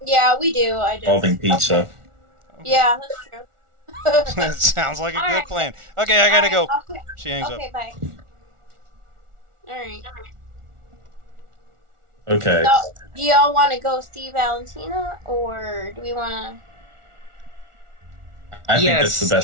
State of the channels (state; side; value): late; left; 1.4 ms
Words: Yeah, we do. I just. involving pizza. Yeah, that's true. That sounds like a All good right. plan. Okay, I gotta go. Okay. She hangs up. Okay. Bye. All right. Okay. So, do y'all want to go see Valentina, or do we want I think yes, that's the